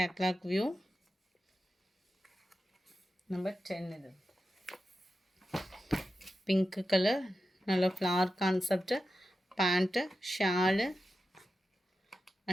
view. Number 10 இது. பிங்க் கலர், நல்ல flower concept. Pant, shawl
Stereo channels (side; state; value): both; normal; correlation 0.91